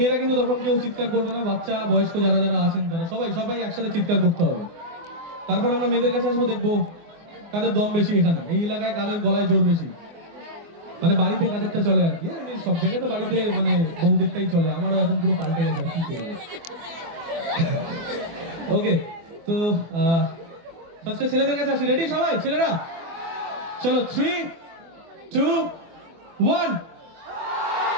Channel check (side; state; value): left; late; 24 ms